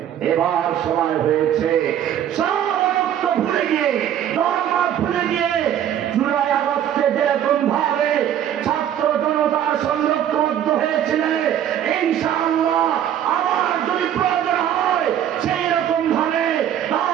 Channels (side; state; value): left; quieter; 10.4 dB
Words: এবার সময় হয়েছে সব ঐক্য ভুলে গিয়ে, ধর্ম ভুলে গিয়ে, জুলাই আগস্টে যেরকম ভাবে ছাত্র জনতার সঙ্গে ঐক্যবদ্ধ হয়েছিল, ইনশাআল্লাহ আবার যদি প্রয়োজন হয় সেই রকম ভাবে